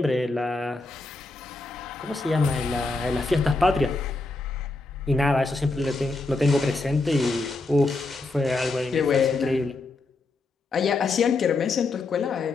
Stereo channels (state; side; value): quieter; right; 3.3 dB